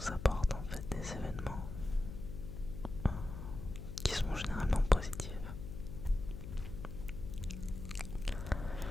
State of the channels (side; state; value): left; noise; hum, 8 dB below the sound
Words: apporte en fait des événements qui sont généralement positifs.